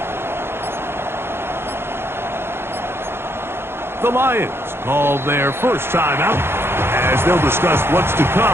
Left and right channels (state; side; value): late; left; 0.11 ms